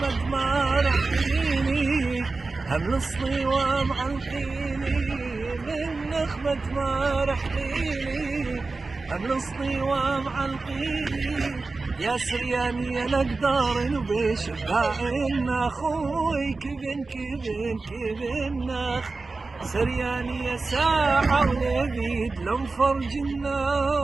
ما رحيني هم الصلي ومعلقيني من نخمة ما رحيني هم الصلي ومعلقيني يا سرياني يا نقدار وبشباع اخوي كبن كبن كبن ناخ سرياني يا ساعة ونبيد لو فرج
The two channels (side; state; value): left; quieter; 3.7 dB